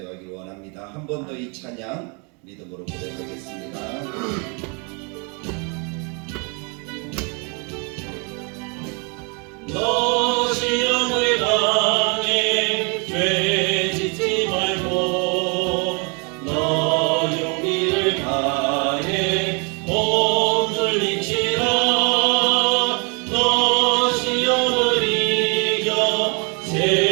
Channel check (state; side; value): quieter; left; 34.3 dB